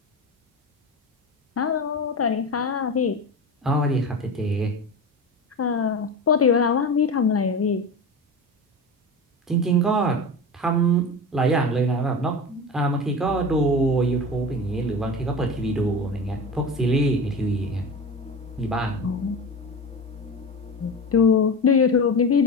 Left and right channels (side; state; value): both; normal; correlation 0.27